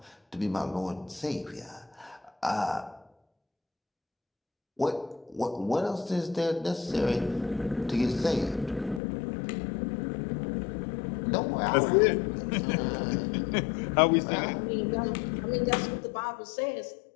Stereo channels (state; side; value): drops out; right; at 9.0 s